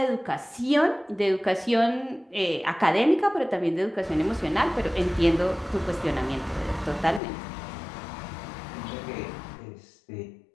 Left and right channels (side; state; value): right; drops out; at 7.2 s